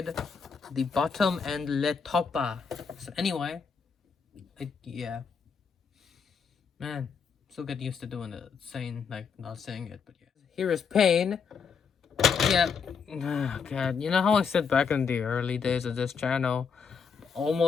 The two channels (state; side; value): quieter; right; 6.0 dB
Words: the bottom, and le topa. So anyway, yeah. Man, still get used to doing it, not saying it, but yeah. Here is Pain. Yeah, oh god, you know how I said back in the early days of this channel,